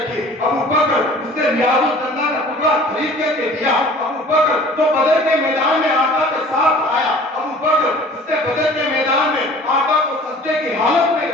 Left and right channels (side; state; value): both; normal; correlation 0.47